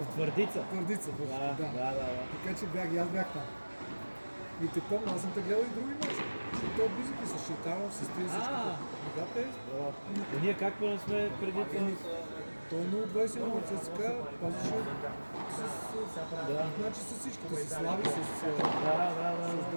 Твърдица. Да. Така че аз бях там. И те помня, аз съм те гледал и други мачи. Защото той близък и с Шитанов, с тези всичките. Да, те. И ние как не сме преди това? Той е 0-21 от ЦСКА, пазеше значи с всичките, с Слави, с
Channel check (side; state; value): both; inverted; correlation -1.00